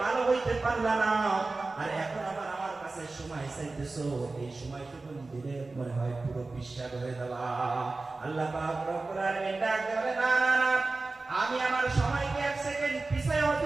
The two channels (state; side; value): quieter; left; 3.5 dB